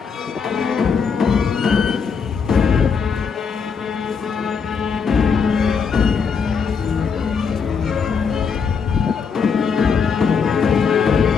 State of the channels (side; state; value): right; quieter; 5.9 dB